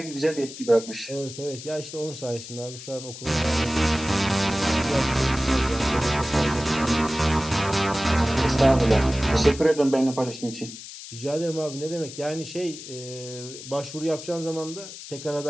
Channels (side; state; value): left; noise; hiss, 13 dB below the sound